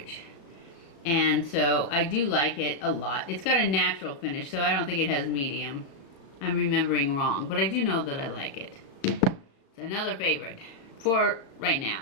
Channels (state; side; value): late; right; 35 ms